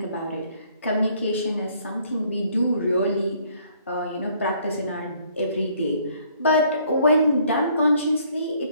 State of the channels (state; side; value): inverted; both; correlation -0.63